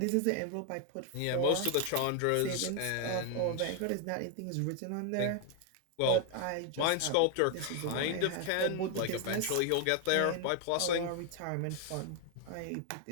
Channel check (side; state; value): both; different; correlation 0.00